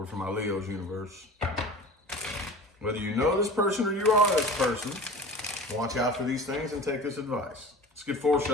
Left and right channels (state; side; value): normal; both; correlation 0.37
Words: for my Leo's universe. Whether you know this person or you are this person, watch out for these things and take this advice. Let's get 4